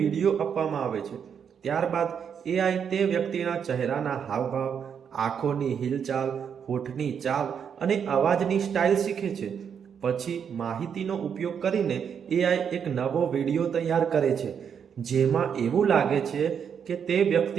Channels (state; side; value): quieter; left; 7.5 dB